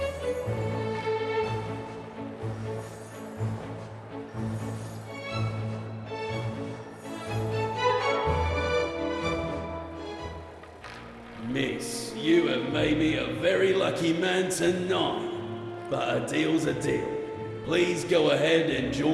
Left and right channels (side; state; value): both; identical; correlation 1.00